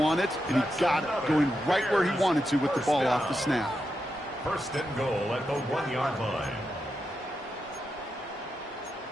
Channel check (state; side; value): normal; both; correlation 0.86